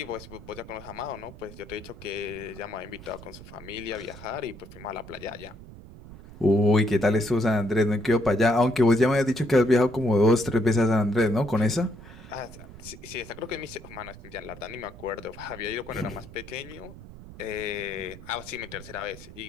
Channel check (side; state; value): right; noise; rumble, 17 dB below the sound